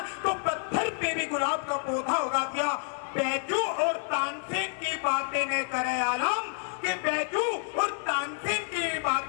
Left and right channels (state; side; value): silent; right; 56 dB below the other